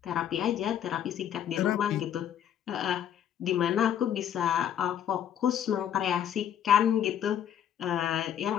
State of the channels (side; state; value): right; quieter; 9.9 dB